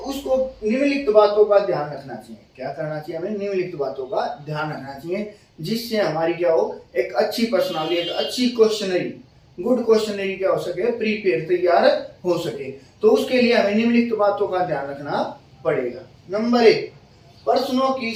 निम्नलिखित बातों का ध्यान रखना चाहिए। क्या करना चाहिए हमें? निम्नलिखित बातों का ध्यान रखना चाहिए जिससे हमारी क्या हो, एक अच्छी पर्सनालिटी, एक अच्छी क्वेश्चनरी, गुड क्वेश्चनरी क्या हो सके, प्रीपेयर तैयार हो सके। तो उसके लिए हमें निम्नलिखित बातों का ध्यान रखना पड़ेगा। नंबर 1, प्रश्नों की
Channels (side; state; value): both; identical; correlation 1.00